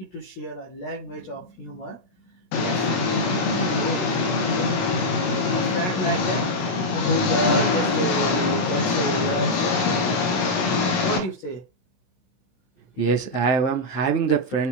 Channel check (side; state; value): right; late; 16 ms